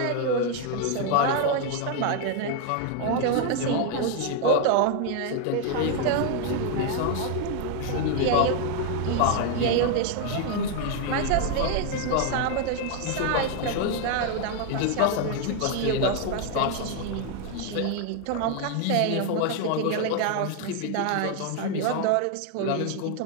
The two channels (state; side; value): different; both; correlation 0.00